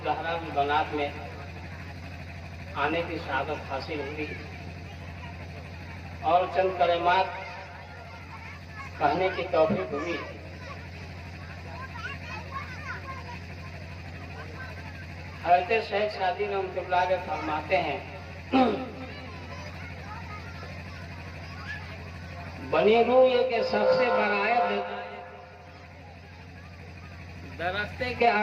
زہرا البنات میں آنے کی سعادت حاصل ہوئی اور چند کلمات کہنے کی توفیق ہوئی۔ حضرت شیخ سعدی رحمۃ اللہ علیہ فرماتے ہیں بنی روح کے سب سے بڑا درختے کے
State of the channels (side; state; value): both; identical; correlation 1.00